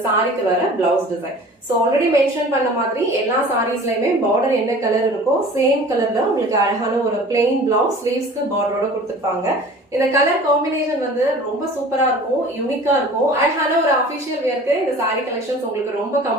சாரிக்கு வர blouse design. So already mention பண்ண மாதிரி எல்லா சாரீஸ்லயுமே பார்டர் என்ன கலர் இருக்கோ சேம் கலர்ல உங்களுக்கு அழகான ஒரு பிளெயின் பிளவுஸ் ஸ்லீவ்ஸ்க்கு பார்டரோட கொடுத்திருப்பாங்க. இந்த கலர் காம்பினேஷன் வந்து ரொம்ப சூப்பரா இருக்கும், யூனிக்கா இருக்கும். அழகான ஒரு அபிஷியல் வேர்க்கு இந்த சாரி கலெக்ஷன்ஸ் உங்களுக்கு ரொம்ப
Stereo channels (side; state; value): both; normal; correlation 0.44